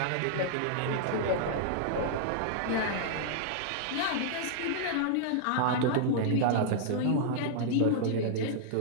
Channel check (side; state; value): both; different; correlation -0.01